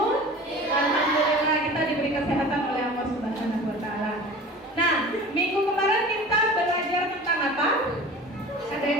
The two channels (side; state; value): both; normal; correlation 0.39